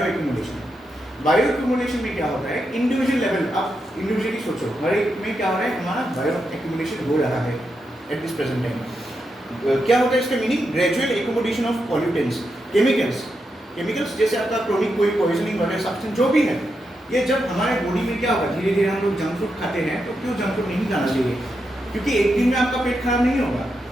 बायो एक्यूमुलेशन में क्या होता है इंडिविजुअल लेवल आप इंडिविजुअली सोचो हर एक में क्या हो रहा है हमारा बायो एक्यूमुलेशन हो रहा है एट दिस प्रेजेंट टाइम क्या होता है इसका meaning gradual accumulation of pollutants chemicals जैसे आपका क्रोनिक कोई पॉइजनिंग वगैरह सब्सटेंस जो भी है ये जब हमारे बॉडी में क्या होगा धीरे धीरे हम लोग जंक फूड खाते हैं तो क्यों जंक फूड नहीं खाना चाहिए क्योंकि एक दिन में आपका पेट खराब नहीं होगा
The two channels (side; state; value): both; normal; correlation 0.85